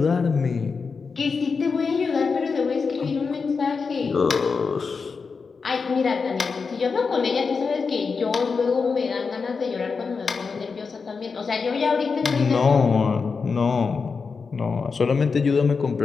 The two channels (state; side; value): quieter; right; 5.0 dB